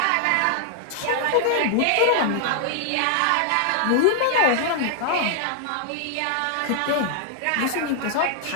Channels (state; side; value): different; both; correlation -0.01